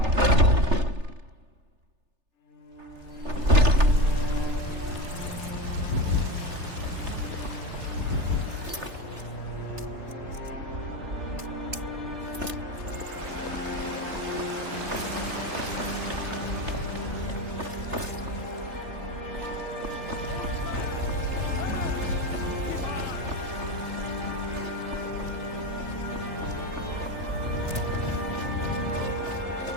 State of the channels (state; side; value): late; left; 3.3 ms